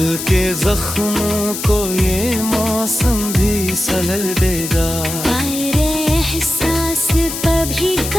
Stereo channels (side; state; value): left; noise; hiss, 6 dB below the sound